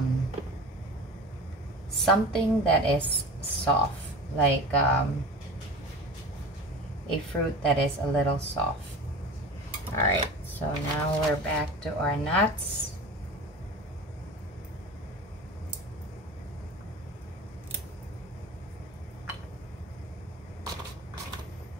Something that is soft, like a fruit that is a little soft. All right, so now we're back to our nuts.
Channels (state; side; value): normal; both; correlation 0.34